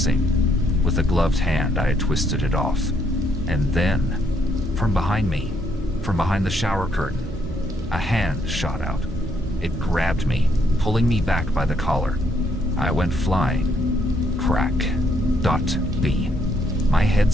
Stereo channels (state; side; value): normal; both; correlation 0.72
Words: With a gloved hand, I had twisted it off. And then, from behind me, from behind the shower curtain, a hand shot out. It grabbed me, pulling me back by the collar. I went flying. Crack. Dot. B. My head